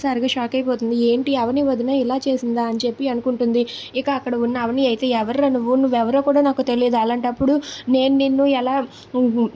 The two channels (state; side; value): identical; both; correlation 1.00